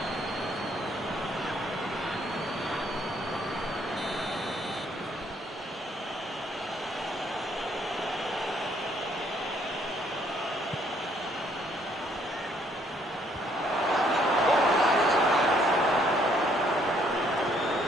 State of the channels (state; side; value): normal; both; correlation 0.67